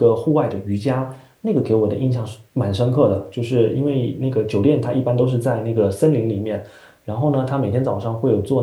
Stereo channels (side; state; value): both; identical; correlation 1.00